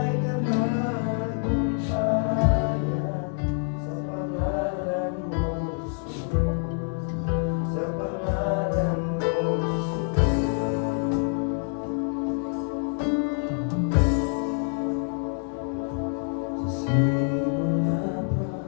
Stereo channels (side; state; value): right; silent; 56 dB below the other